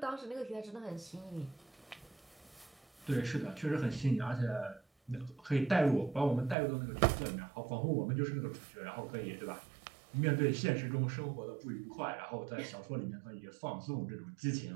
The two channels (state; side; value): drops out; left; at 6.6 s